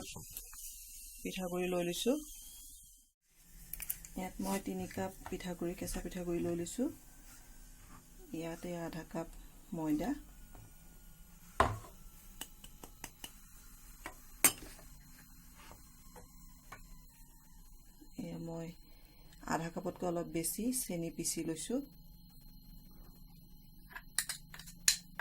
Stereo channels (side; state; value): both; identical; correlation 1.00